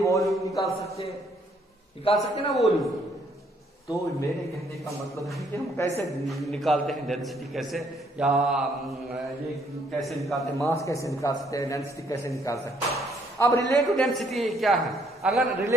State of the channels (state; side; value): normal; both; correlation 0.68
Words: निकाल सकते ना वॉल्यूम। तो मेरे कहने का मतलब है कि हम कैसे निकालते हैं डेंसिटी, कैसे या ये कैसे निकालते हैं, मास कैसे निकाल सकते हैं, डेंसिटी कैसे निकाल सकते हैं। अब रिलेटिव डेंसिटी क्या है? अगर